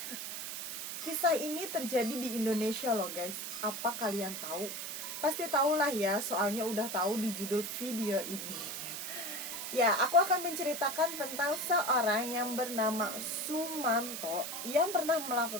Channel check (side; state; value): right; noise; hiss, 5 dB below the sound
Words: Kisah ini terjadi di Indonesia loh guys. Apa kalian tahu? Pasti tahulah ya, soalnya udah tahu di judul video ini. Ya, aku akan menceritakan tentang seorang yang bernama Sumanto yang pernah